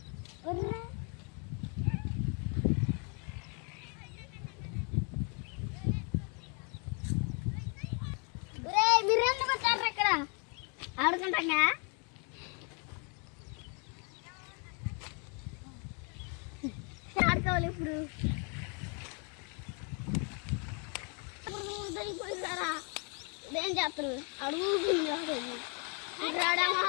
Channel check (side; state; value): right; quieter; 36.7 dB